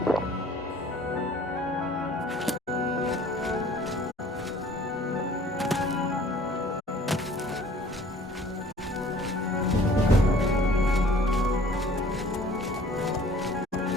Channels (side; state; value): both; normal; correlation 0.52